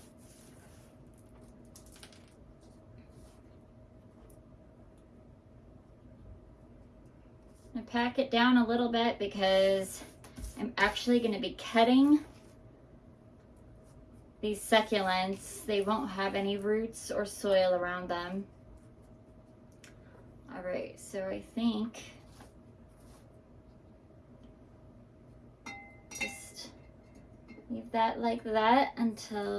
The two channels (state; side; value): identical; both; correlation 1.00